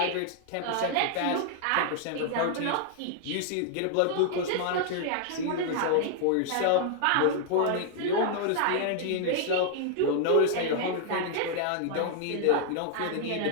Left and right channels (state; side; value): different; both; correlation 0.00